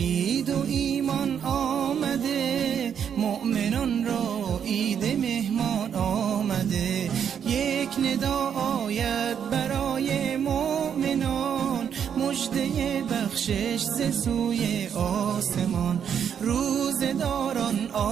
و ایمان آمده، مؤمنان را عید مهمان آمده. یک ندا آید برای مؤمنان، مژده بخشش ز سوی آسمان. روزداران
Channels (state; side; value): quieter; left; 8.1 dB